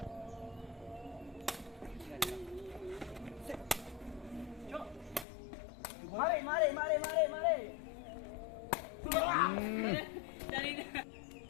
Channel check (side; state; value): right; drops out; at 5.2 s